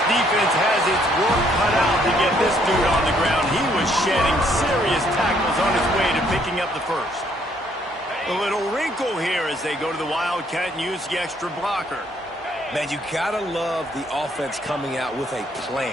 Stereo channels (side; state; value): both; normal; correlation 0.67